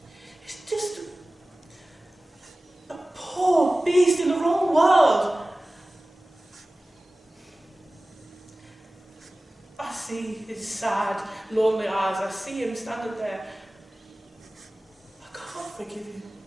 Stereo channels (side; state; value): both; normal; correlation 0.97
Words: he's just a poor beast in the wrong world. I see his sad, lonely eyes. I see him standing there. I can't forgive him.